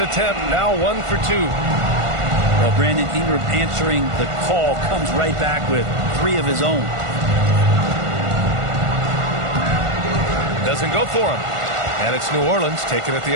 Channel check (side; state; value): left; late; 1.5 ms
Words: now 1 for 2. Well, Brandon Ingram answering the call comes right back with 3 of his own. Doesn't go for him. And it's New Orleans taking it the